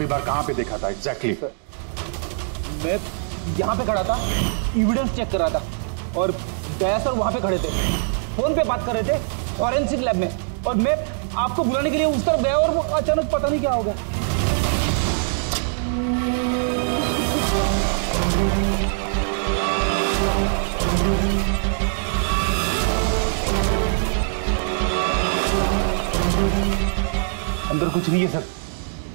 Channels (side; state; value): left; silent; digital silence